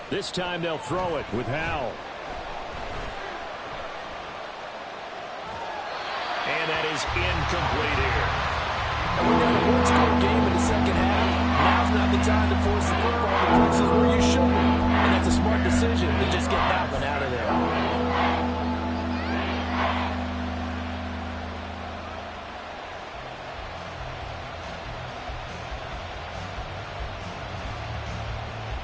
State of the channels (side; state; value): both; identical; correlation 1.00